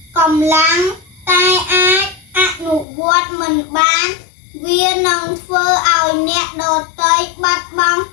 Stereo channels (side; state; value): right; drops out; at 2.9 s